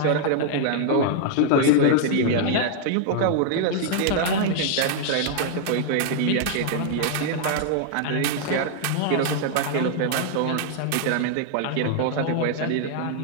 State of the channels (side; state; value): both; different; correlation 0.00